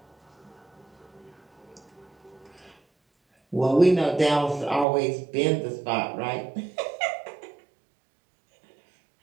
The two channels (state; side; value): drops out; left; at 4.9 s